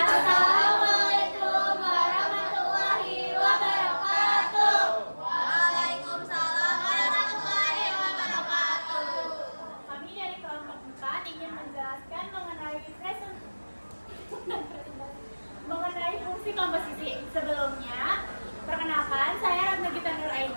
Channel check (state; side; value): inverted; both; correlation -1.00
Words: warahmatullahi wabarakatuh. Waalaikumsalam warahmatullahi wabarakatuh. Kami dari kelompok 4 ingin menjelaskan mengenai fungsi komposisi. Sebelumnya, perkenalkan saya Ratna Gita